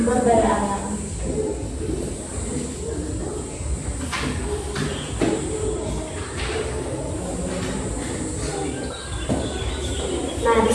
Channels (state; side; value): identical; both; correlation 1.00